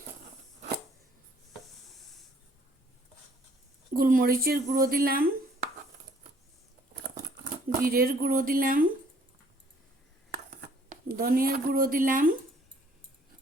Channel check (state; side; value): normal; both; correlation 0.60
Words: গোলমরিচের গুঁড়ো দিলাম, জিরের গুঁড়ো দিলাম, ধনিয়ার গুঁড়ো দিলাম,